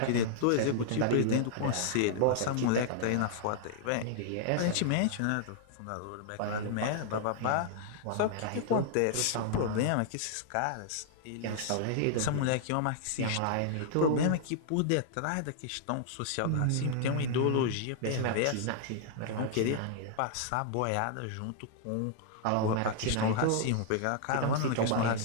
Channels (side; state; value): both; different; correlation -0.01